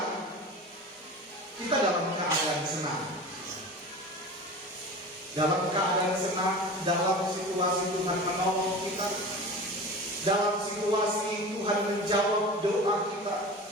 kita dalam keadaan senang. Dalam keadaan senang, dalam situasi Tuhan menolong kita, dalam situasi Tuhan menjawab doa kita,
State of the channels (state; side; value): normal; both; correlation 0.33